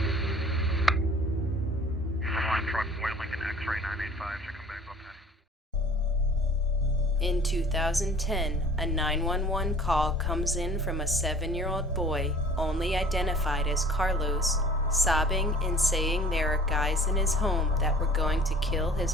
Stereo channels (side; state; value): both; normal; correlation 0.49